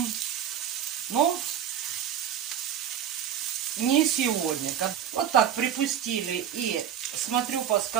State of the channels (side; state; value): left; quieter; 9.7 dB